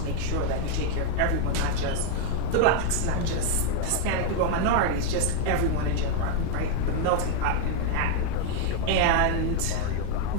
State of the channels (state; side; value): different; both; correlation 0.00